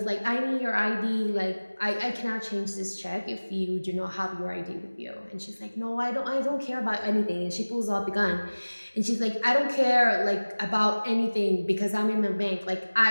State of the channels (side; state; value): both; inverted; correlation -1.00